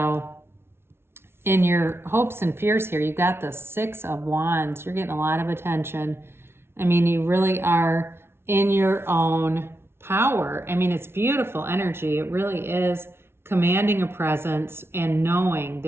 in your hopes and fears here, you've got the 6 of Wands. You're getting a lot of attention. I mean, you really are in your own power. I mean, it's beautiful energy. It really is commanding a presence and knowing.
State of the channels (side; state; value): left; late; 0.12 ms